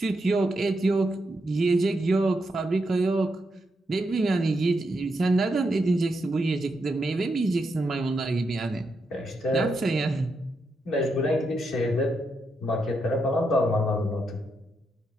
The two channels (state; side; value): normal; both; correlation 0.83